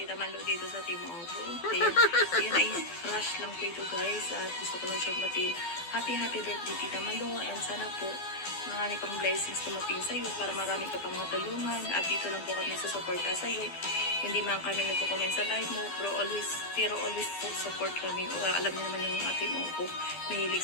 Malo dito sa Team Auto. Ayun ay rush lang po ito guys. At gusto ko lang siyang batiin. Happy birthday Tita Malo. And sana po marami pang blessings tumating sa iyo para marami ka pang matulungan. At dito lang po kami sa suporta sa iyo. Hindi man kami nagko-comment sa live mo. Pero always po support kami. Alam niyo naman yung ating mo po. Mahilig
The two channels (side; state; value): right; late; 12 ms